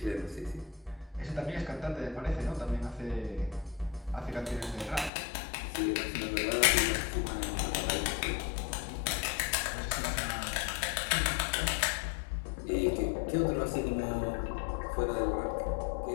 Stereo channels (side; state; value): right; drops out; at 5.1 s